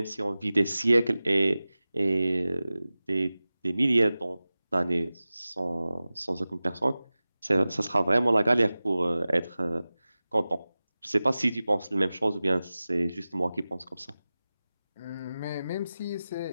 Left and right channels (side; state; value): both; inverted; correlation -0.96